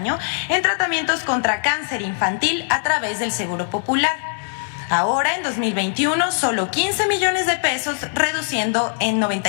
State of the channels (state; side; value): silent; right; digital silence